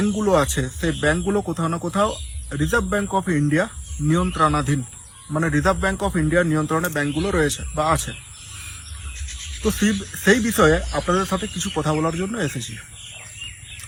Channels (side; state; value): both; identical; correlation 1.00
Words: আছে সেই ব্যাংকগুলো কোথাও না কোথাও রিজার্ভ ব্যাংক অফ ইন্ডিয়া নিয়ন্ত্রণাধীন, মানে রিজার্ভ ব্যাংক অফ ইন্ডিয়ার নিয়ন্ত্রণে ব্যাংকগুলো রয়েছে বা আছে। তো সেই বিষয়ে আপনাদের সাথে কিছু কথা বলার জন্য এসেছি।